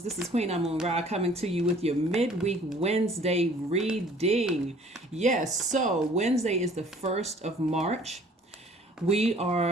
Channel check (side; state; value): both; normal; correlation 0.54